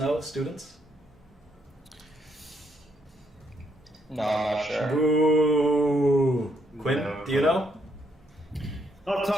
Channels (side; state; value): both; normal; correlation 0.74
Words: students? No, I'm not sure. Boo! Quinn, No. do you know? Off the